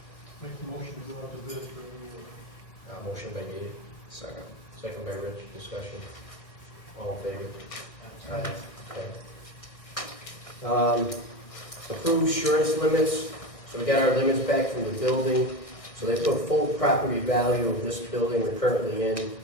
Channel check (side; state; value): right; late; 1.6 ms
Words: Make the motion to go out to bid for a new roof. Motion by Dave, Second. second by Rich, discussion. All in favor? Aye. Okay. Approved insurance limits, so we got our limits back from the building. So they put full property value of this building we're currently in,